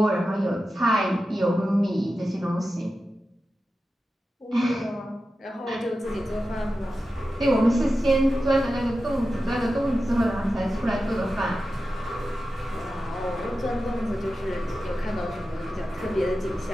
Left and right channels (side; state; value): both; normal; correlation 0.92